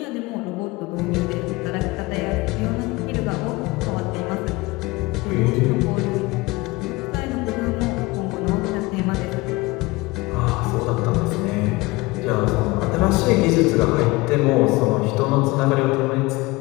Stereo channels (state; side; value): quieter; right; 22.2 dB